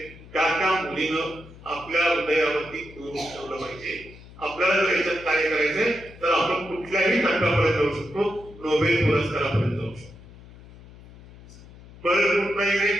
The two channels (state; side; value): noise; left; hum, 20 dB below the sound